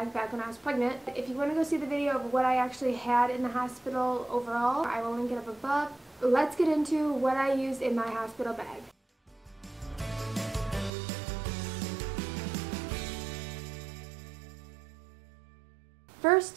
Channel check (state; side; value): drops out; left; at 10.9 s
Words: back when I was pregnant. If you want to go see the video of what I actually had in the hospital overall, I will link it up above. Let's get into what I used in my hospital bag.